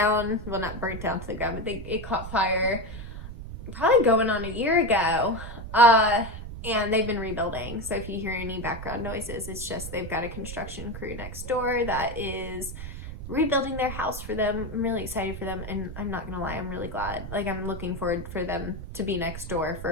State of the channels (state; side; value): noise; right; rumble, 10 dB below the sound